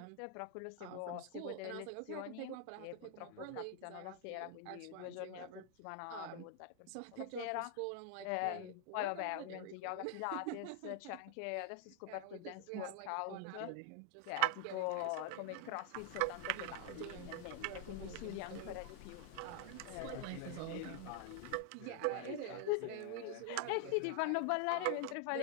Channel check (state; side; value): different; both; correlation 0.00